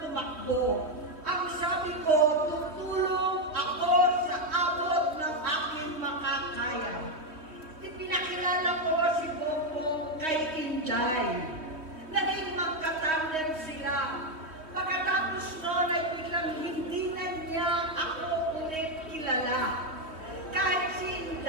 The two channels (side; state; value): left; late; 3.1 ms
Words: tumakbo. Ang sabi ko, tutulong ako sa abot ng aking makakaya. Ipinakilala ko si Bongbong kay Inday. Naging magkatandem sila. Pagkatapos noon ay biglang hindi na niya ako ulit kilala. Kahit si